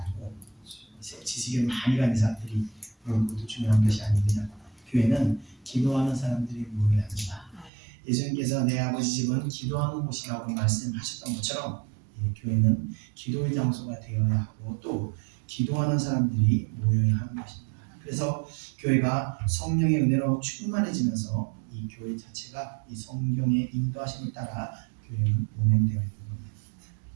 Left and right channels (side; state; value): left; drops out; at 7.7 s